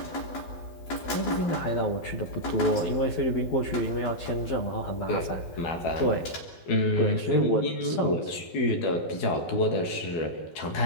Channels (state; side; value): late; right; 12 ms